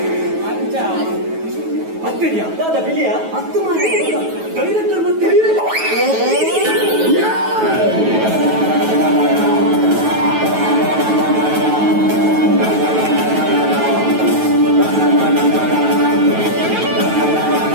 ಹತ್ತಿದ್ಯಾ ದಾದಾ ಬಿಳಿಯ ಹತ್ತು ಮಾಡಿ ಡೈರೆಕ್ಟರ್ ಮತ್ತೆ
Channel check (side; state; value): left; late; 9.2 ms